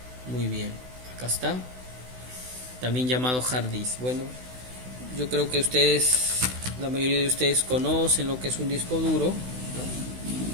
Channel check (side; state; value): left; late; 16 ms